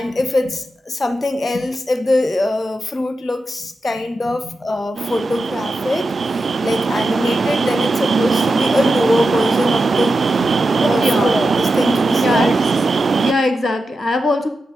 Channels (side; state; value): both; normal; correlation 0.90